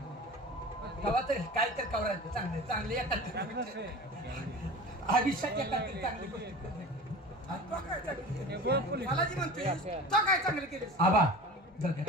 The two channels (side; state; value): both; normal; correlation 0.36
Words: तेव्हा तर काय तर कवरायचं चांगले चांगले येतात आयुष्यात येतात चांगली गोष्टी मला जी म्हणते तो काय चांगलं केलं आबा